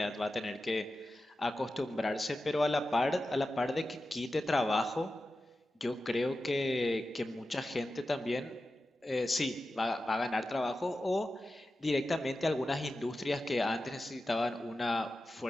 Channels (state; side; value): normal; both; correlation 0.93